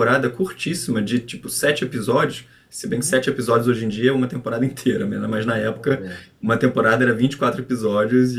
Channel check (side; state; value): both; identical; correlation 1.00